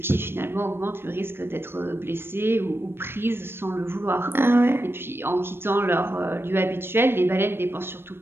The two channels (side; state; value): left; late; 0.11 ms